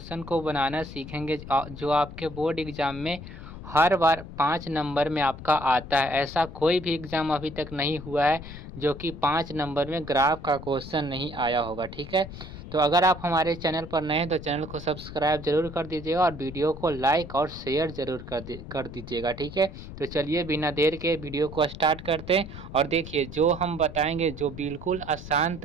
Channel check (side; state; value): left; noise; rumble, 12 dB below the sound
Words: को बनाना सीखेंगे जो आपके बोर्ड एग्जाम में हर बार 5 नंबर में आपका आता है। ऐसा कोई भी एग्ज़ाम अभी तक नहीं हुआ है जो कि 5 नंबर में ग्राफ का क्वेश्चन नहीं आया होगा। ठीक है, तो अगर आप हमारे चैनल पर नए हैं तो चैनल को सब्सक्राइब जरूर कर दीजिएगा और वीडियो को लाइक और शेयर जरूर कर दीजिएगा। ठीक है, तो चलिए बिना देर के वीडियो को स्टार्ट करते हैं। और देखिए, जो हम बताएंगे जो बिल्कुल आसान